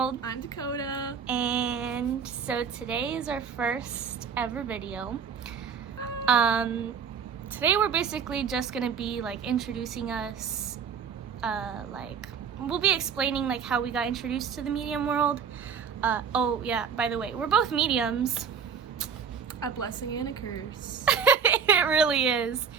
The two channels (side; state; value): left; quieter; 6.7 dB